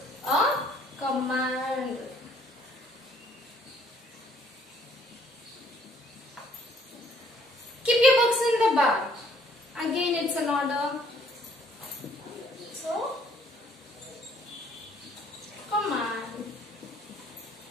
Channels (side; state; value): both; normal; correlation 0.62